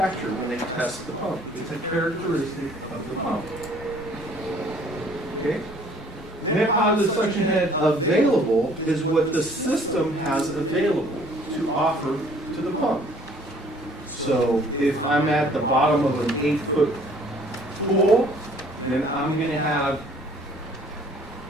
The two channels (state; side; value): normal; both; correlation 0.57